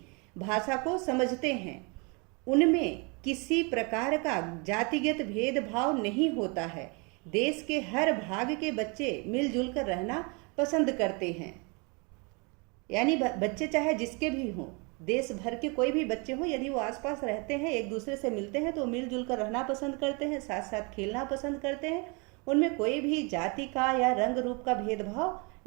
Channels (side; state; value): left; quieter; 31.3 dB